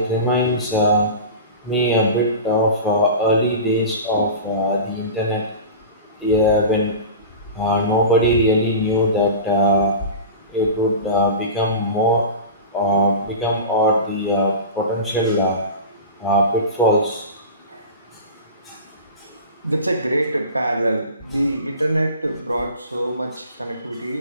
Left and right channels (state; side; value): inverted; both; correlation -0.31